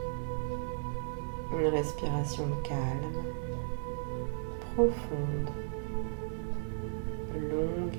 Une respiration calme, profonde, longue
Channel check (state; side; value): silent; left; digital silence